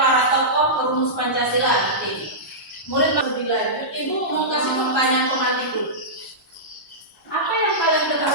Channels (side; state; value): both; normal; correlation -0.15